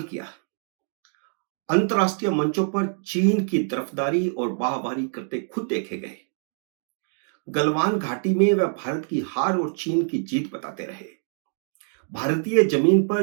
किया। अंतर्राष्ट्रीय मंचों पर चीन की तरफदारी और वाहवाही करते खुद देखे गए। गलवान घाटी में वह भारत की हार और चीन की जीत बताते रहे। भारतीय जमीन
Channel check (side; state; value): left; silent; 62 dB below the other